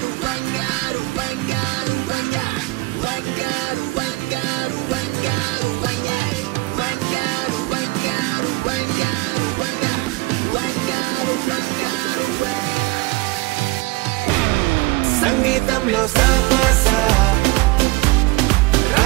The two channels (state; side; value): quieter; left; 22.6 dB